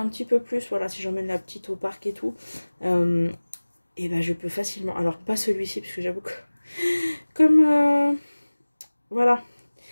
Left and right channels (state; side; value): inverted; both; correlation -1.00